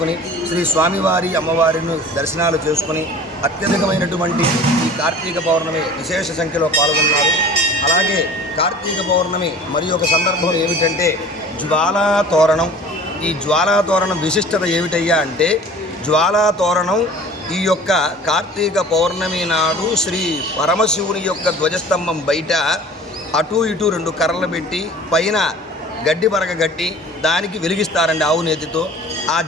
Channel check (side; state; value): both; normal; correlation 0.44